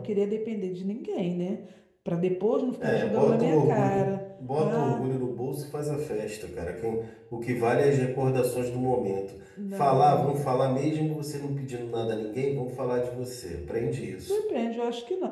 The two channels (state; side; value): identical; both; correlation 1.00